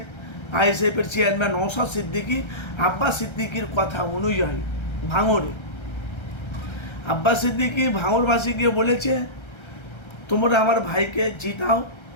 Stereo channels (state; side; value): late; right; 1.3 ms